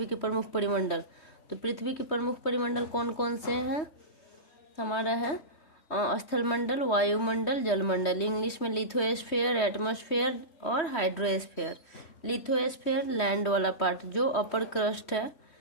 के प्रमुख परिमंडल। तो पृथ्वी के प्रमुख परिमंडल कौन कौन से हैं, हमारा है स्थल मंडल, वायुमंडल, जलमंडल। इंग्लिश में लिथोस्फीयर, एटमॉस्फेयर और हाइड्रोस्फीयर। लिथोस्फीयर लैंड वाला पार्ट जो अपर क्रस्ट है,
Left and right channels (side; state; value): right; late; 3.2 ms